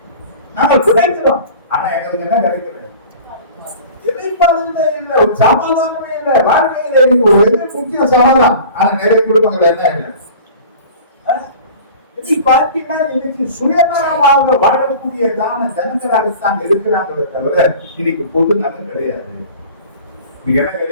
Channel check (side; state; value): both; inverted; correlation -0.42